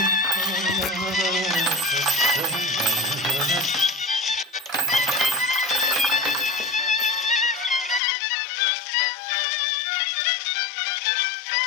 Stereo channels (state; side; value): drops out; right; at 8.0 s